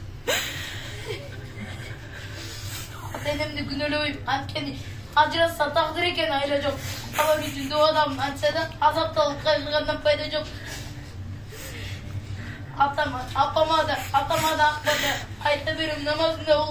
Ата-энемди күнөөлөбөйм, анткени ажыраса тагдыр экен, айла жок. Ала жүзүндө адам антса да азапталып кайгыргандан пайда жок. Апама да акбада айта берем, намазында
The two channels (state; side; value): identical; both; correlation 1.00